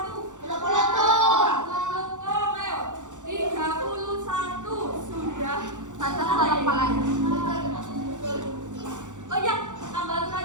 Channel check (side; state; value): left; late; 0.85 ms